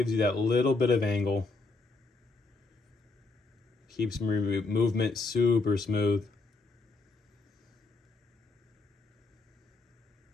you that little bit of angle. Keeps movement super smooth.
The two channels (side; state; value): right; quieter; 3.7 dB